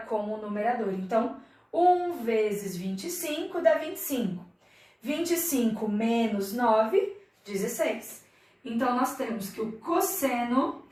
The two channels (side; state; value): both; identical; correlation 1.00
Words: o numerador. Então, 1 vezes 25 dá 25. 25 menos 9, 16. Então, nós temos que o cosseno